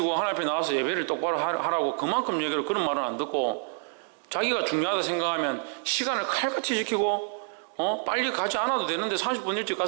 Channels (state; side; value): silent; left; 60 dB below the other